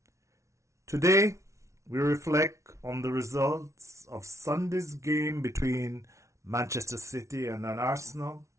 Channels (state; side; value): late; left; 0.14 ms